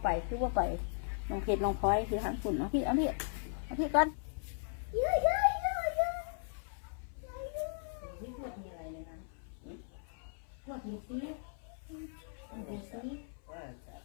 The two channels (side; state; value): right; silent; 53 dB below the other